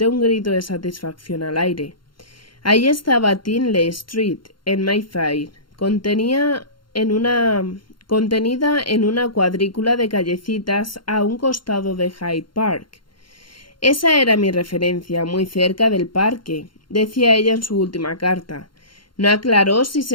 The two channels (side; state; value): right; late; 0.72 ms